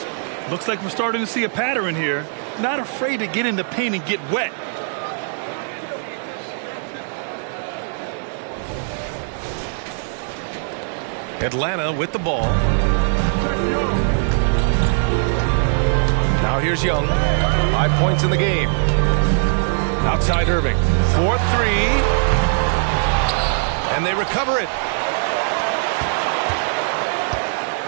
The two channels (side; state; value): left; silent; digital silence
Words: Looks like we're starting to see a pattern here. Not afraid to get in the paint and get wet. Atlanta with the ball. Now here's Young. 5 points in the game. Outside Irving. 4-3. And they recover it.